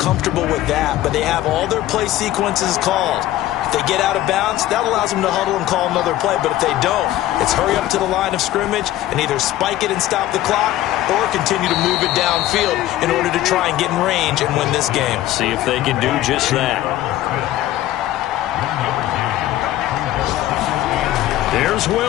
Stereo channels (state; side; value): quieter; right; 14.4 dB